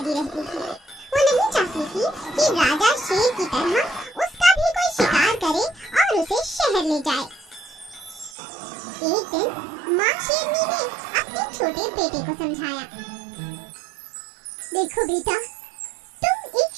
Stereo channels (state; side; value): drops out; left; at 8.3 s